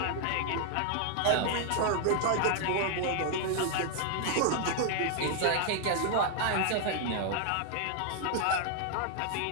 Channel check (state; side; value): different; both; correlation 0.00